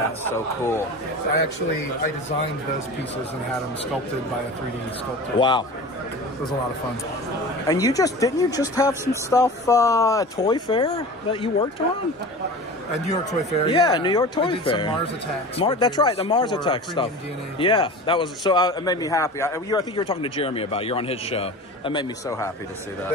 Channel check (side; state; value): both; normal; correlation 0.35